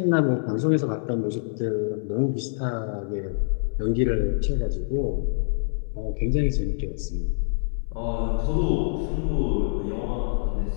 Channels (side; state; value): right; silent; 61 dB below the other